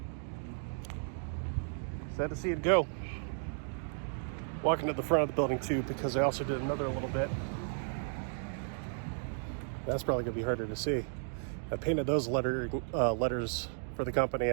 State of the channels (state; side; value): silent; left; 55 dB below the other